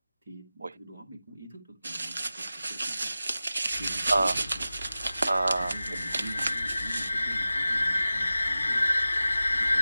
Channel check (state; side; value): inverted; both; correlation -0.95